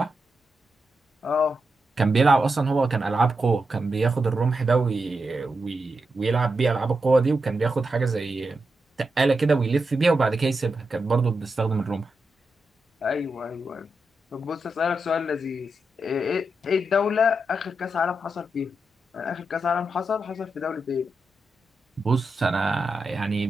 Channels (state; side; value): normal; both; correlation 0.87